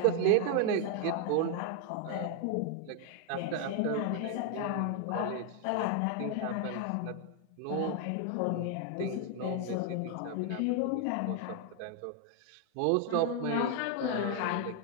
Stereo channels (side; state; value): both; different; correlation 0.01